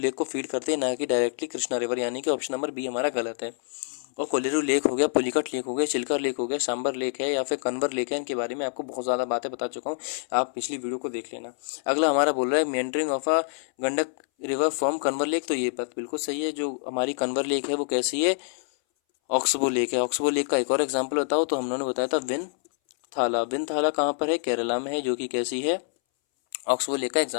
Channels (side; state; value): right; silent; 61 dB below the other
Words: को फीड करते हैं, ना कि डायरेक्टली कृष्णा रिवर, यानी कि ऑप्शन नंबर बी हमारा गलत है। और कोलेरू लेक हो गया, पुलिकट लेक हो गया, चिल्का लेक हो गया, सांबर लेक है या फिर कन्वर लेक है, इनके बारे में आपको बहुत ज़्यादा बातें बता चुका हूँ, आप पिछली वीडियो को देख लेना। अगला हमारा बोल रहा है meandering of a Gandak river from Kanwar lake, तो ये बात बिल्कुल सही है। जो हमारी कन्वर लेक है वो कैसी है, ऑक्सबो लेक है। ऑक्सबो लेक का एक और एग्जाम्पल बताओ, तो हम लोगों ने बताया था विन थाला। विन थाला कहाँ पर है, केरला में है, जो कि कैसी है, ऑक्सबो लेक का